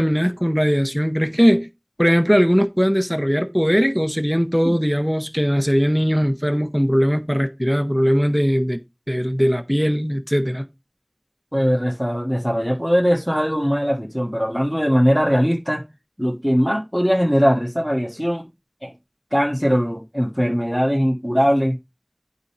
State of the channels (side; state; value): both; identical; correlation 1.00